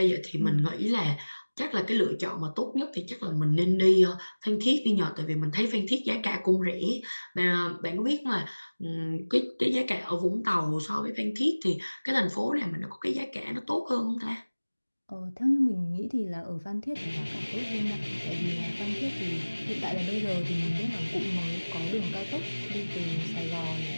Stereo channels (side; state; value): both; inverted; correlation -1.00